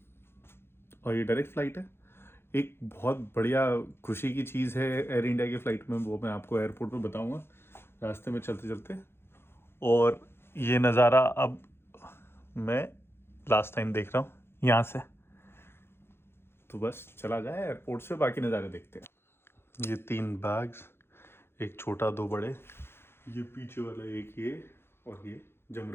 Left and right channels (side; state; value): right; late; 0.11 ms